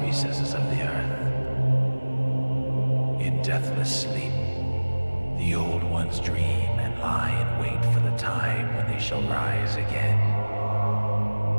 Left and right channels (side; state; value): both; inverted; correlation -1.00